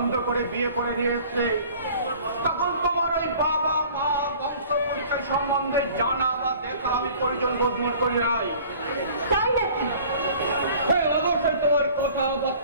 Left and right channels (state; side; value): inverted; both; correlation -0.49